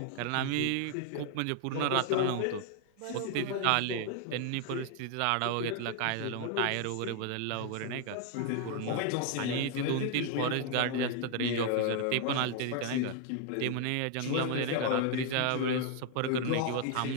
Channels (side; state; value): both; different; correlation 0.00